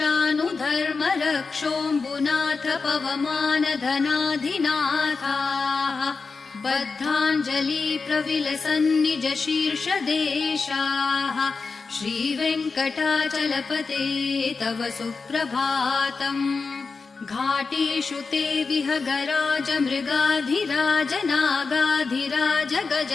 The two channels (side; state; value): right; quieter; 4.5 dB